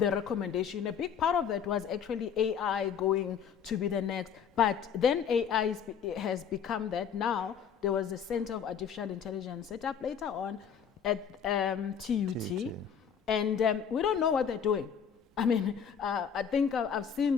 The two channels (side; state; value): right; quieter; 7.5 dB